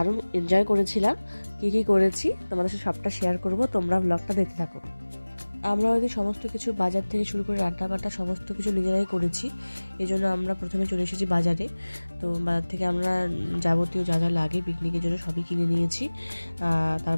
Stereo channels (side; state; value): both; inverted; correlation -1.00